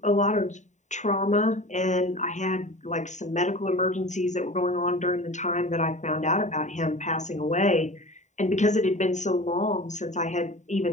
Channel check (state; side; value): late; right; 0.34 ms